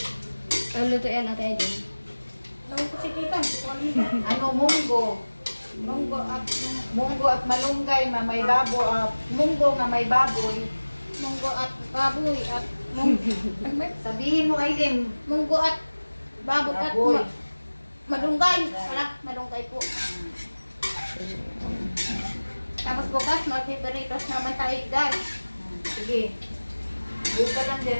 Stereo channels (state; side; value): inverted; both; correlation -1.00